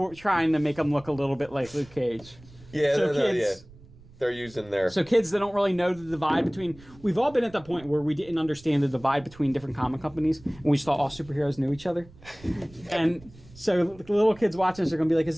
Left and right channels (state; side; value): noise; right; rumble, 22 dB below the sound